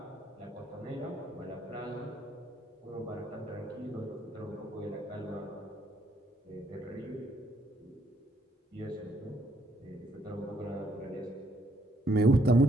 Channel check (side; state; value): both; normal; correlation 0.71